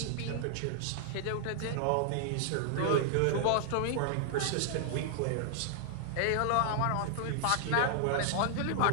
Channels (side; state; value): both; different; correlation -0.01